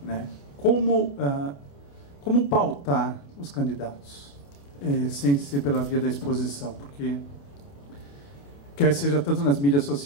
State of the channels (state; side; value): late; right; 28 ms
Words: né? Como pautar os candidatos, sem ser pela via da exposição? Porque, quer seja tanto nas mídias